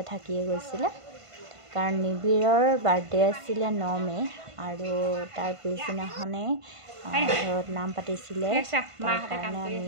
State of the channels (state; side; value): late; left; 1.5 ms